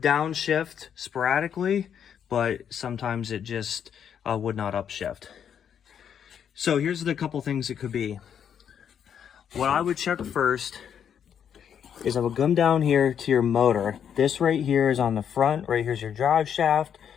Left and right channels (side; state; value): right; quieter; 8.4 dB